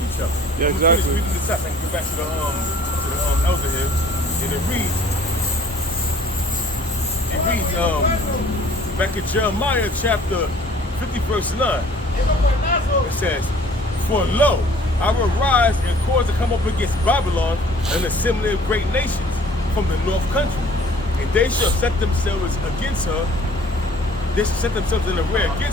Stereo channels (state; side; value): normal; both; correlation 0.54